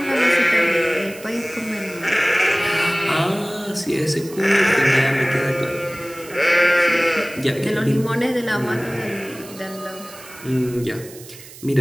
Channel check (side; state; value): right; noise; hiss, 18 dB below the sound